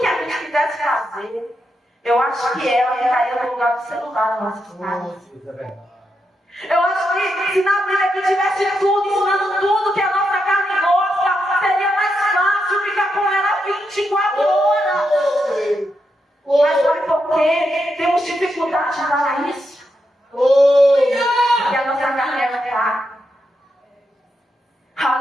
a gente quisesse fazer, eu acho que ela ficaria no lugar do celular na nossa casa. Eu acho que se na Bíblia aqui tivesse tudo, ensinando tudo que a nossa carne gosta, seria mais fácil ficar com ela 24 horas. Mas sabe por quê? Temos dificuldade de falar isso? Porque a nossa carne é fraca.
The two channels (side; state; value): both; normal; correlation 0.84